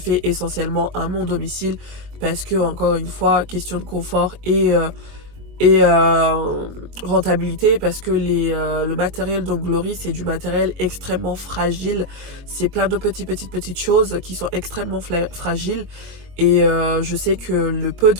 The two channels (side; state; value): left; late; 22 ms